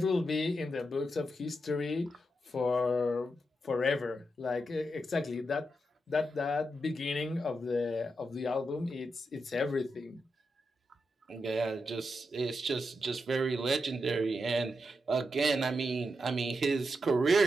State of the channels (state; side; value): normal; both; correlation 0.85